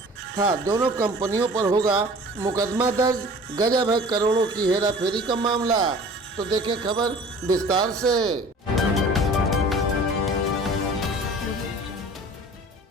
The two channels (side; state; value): both; normal; correlation 0.45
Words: था। दोनों कंपनियों पर होगा मुकदमा दर्ज। गजब है करोड़ों की हेराफेरी का मामला। तो देखें खबर विस्तार से।